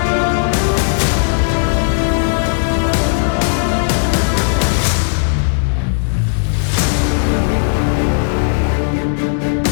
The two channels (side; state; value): right; silent; digital silence